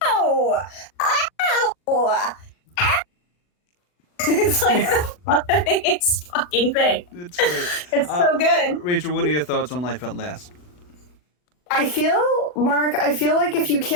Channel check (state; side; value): late; right; 40 ms